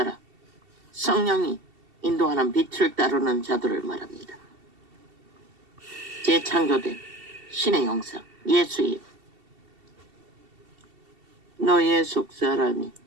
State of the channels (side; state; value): left; late; 2.7 ms